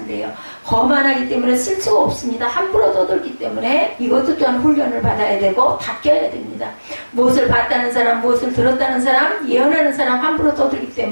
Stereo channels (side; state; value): both; inverted; correlation -1.00